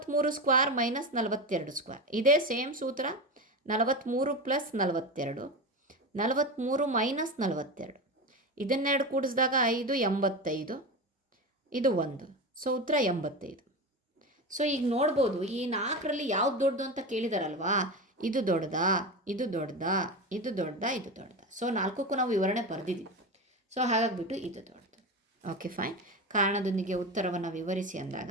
square minus 42 square. ಇದೇ ಸೇಮ್ ಸೂತ್ರ. 43 ಪ್ಲಸ್ 42, 43 ಮೈನಸ್ 42. ಇದನ್ನೆರಡು ಕೂಡಿಸಿದಾಗ 5 85, ಇದು 1. ಸೊ ಉತ್ತರ 85. ಸೊ ಈಗ ನೋಡ್ಬೋದು ಈ 4ರಲ್ಲಿ ಯಾವ್ದು ದೊಡ್ಡದು ಅಂತ ಕೇಳಿದಾರಲ್ವಾ. ಇದು ದೊಡ್ಡದಾ, ಇದು ದೊಡ್ಡದಾ, ಇದು ದೊಡ್ಡದಾ, ಇದು ದೊಡ್ಡದಾ. ಸೊ 4ಕ್ಕೂ ನಾವು ವಿವರಣೆ ಬರೆದಿದ್ದೀವಿ. ಸೊ ಹಾಗಾಗಿಬಿಟ್ಟು ಇದು ದೊಡ್ಡದು. Okay fine. ಕಾರಣದೊಂದಿಗೆ ಉತ್ತರವನ್ನು ವಿವರಿಸಿ ಅಂದಾಗ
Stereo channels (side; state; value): both; normal; correlation 0.22